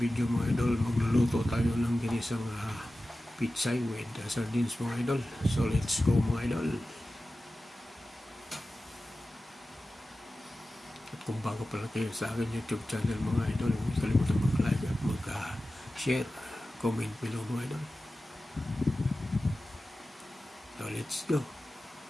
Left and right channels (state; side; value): normal; both; correlation 0.95